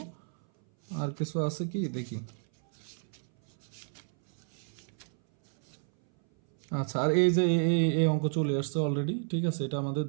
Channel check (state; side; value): silent; left; 57 dB below the other